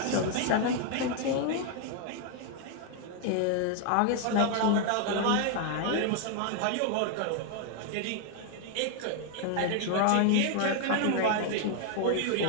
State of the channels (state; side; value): different; both; correlation 0.00